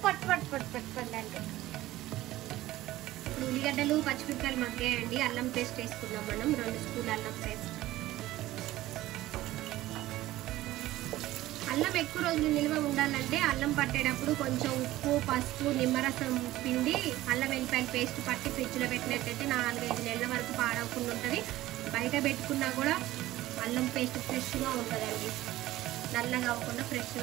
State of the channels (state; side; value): quieter; left; 16.1 dB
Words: పట్ పట్ పట్ పట్ అంటే. ఇప్పుడు ఉల్లిగడ్డలు పచ్చిమిరపకాయలు మగ్గాయండి. అల్లం పేస్ట్ వేసుకున్నాం మనం, 2 స్పూన్ల అల్లం పేస్ట్. అల్లం ఎక్కువ రోజులు నిల్వ ఉండాలంటే అల్లం పట్టేటప్పుడు కొంచెం ఉప్పు, పసుపు, నిమ్మరసం పిండి అల్లం వెల్లిపాయల పేస్ట్ పట్టి ఫ్రిడ్జ్లో పెట్టినట్టయితే 4-5 నెలల వరకు పాడవకుండా ఉంటుంది. బయట పెట్టుకున్నా కూడా అల్లం పేస్ట్ ఫ్రెష్గా ఉంటుందండి, నల్లగా అవ్వకుండా